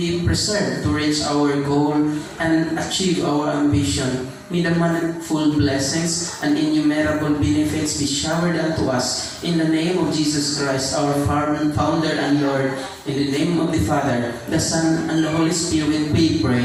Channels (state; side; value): identical; both; correlation 1.00